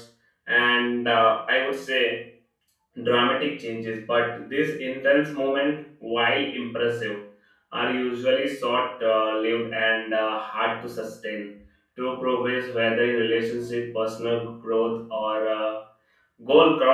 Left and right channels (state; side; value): identical; both; correlation 1.00